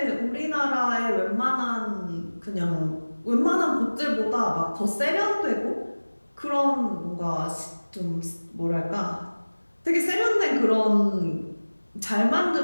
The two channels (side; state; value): both; inverted; correlation -1.00